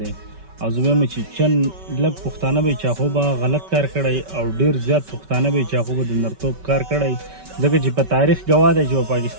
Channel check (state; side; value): late; left; 5.2 ms